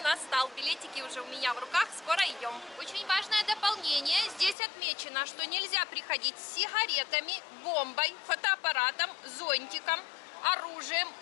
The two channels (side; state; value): right; drops out; at 4.5 s